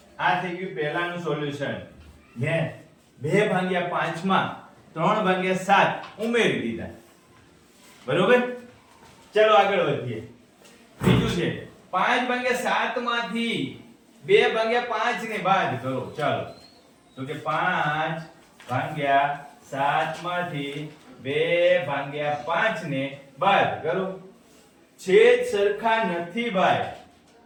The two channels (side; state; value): both; identical; correlation 1.00